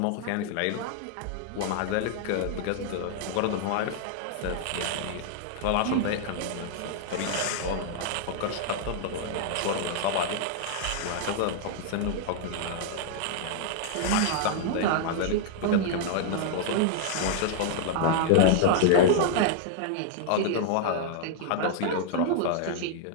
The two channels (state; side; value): different; both; correlation -0.01